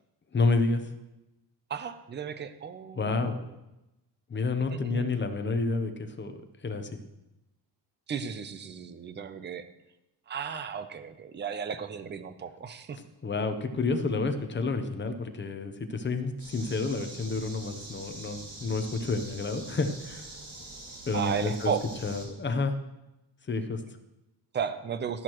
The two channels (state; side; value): normal; both; correlation 0.46